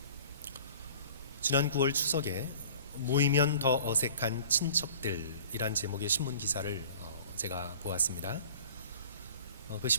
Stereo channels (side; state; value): both; inverted; correlation -0.47